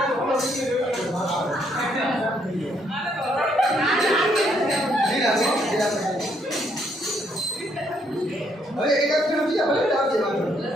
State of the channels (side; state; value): both; normal; correlation 0.71